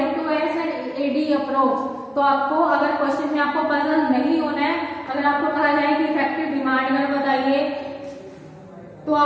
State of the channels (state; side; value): identical; both; correlation 1.00